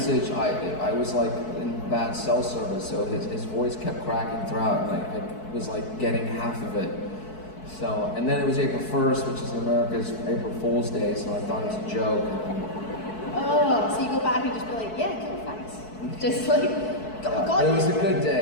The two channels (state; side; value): late; right; 4.6 ms